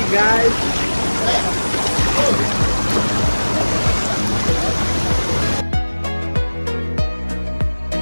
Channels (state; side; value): inverted; both; correlation -1.00